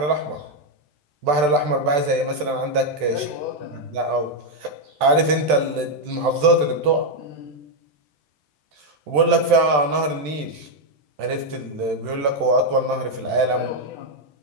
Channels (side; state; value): left; late; 14 ms